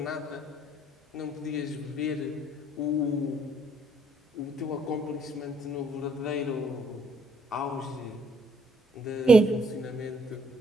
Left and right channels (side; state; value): both; normal; correlation 0.67